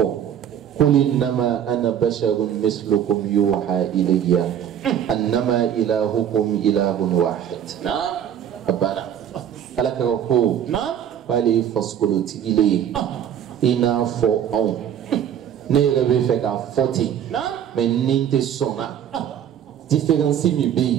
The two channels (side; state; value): left; quieter; 9.5 dB